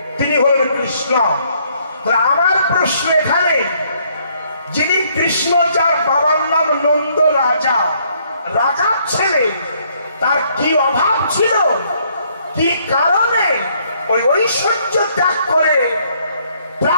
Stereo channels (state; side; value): inverted; both; correlation -0.67